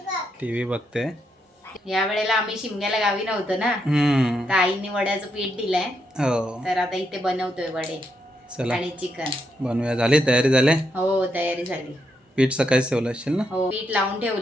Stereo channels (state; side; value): normal; both; correlation 0.80